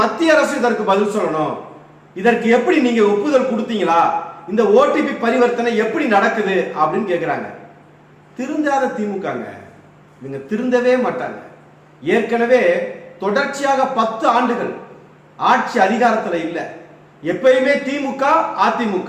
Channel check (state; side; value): identical; both; correlation 1.00